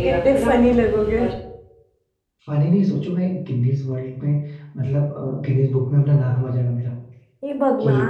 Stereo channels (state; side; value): identical; both; correlation 1.00